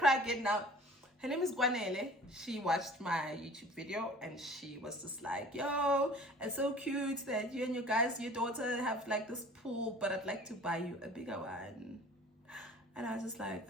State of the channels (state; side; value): normal; both; correlation 0.46